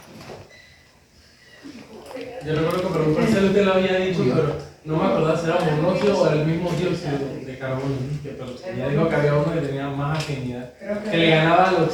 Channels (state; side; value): identical; both; correlation 1.00